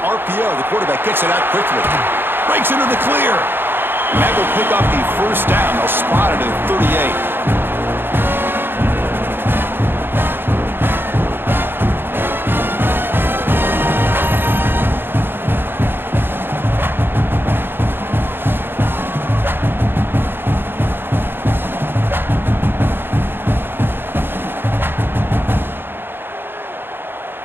The quarterback gets it out quickly. Breaks into the clear. And that will pick up the 1st down. They'll spot it at 38.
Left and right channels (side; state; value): left; late; 0.10 ms